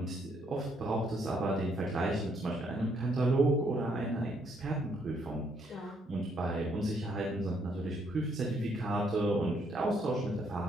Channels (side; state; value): both; normal; correlation 0.71